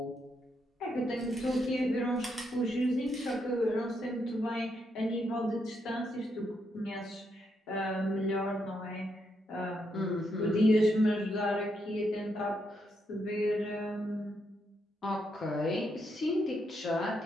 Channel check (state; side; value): normal; both; correlation 0.79